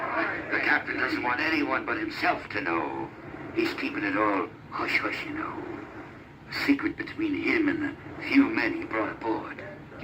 captain doesn't want anyone but himself to know. He's keeping it all hush-hush, you know. A secret between him and the few men he brought aboard.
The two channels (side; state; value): both; identical; correlation 1.00